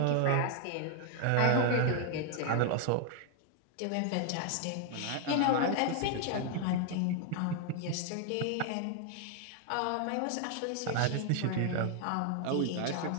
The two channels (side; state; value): both; different; correlation 0.00